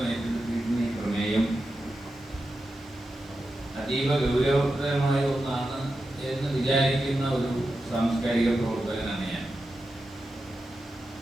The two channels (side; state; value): both; normal; correlation 0.90